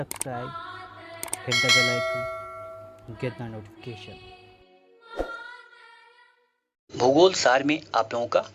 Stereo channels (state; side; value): identical; both; correlation 1.00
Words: hit the bell icon, get the notification. भूगोल सार में आप लोगों का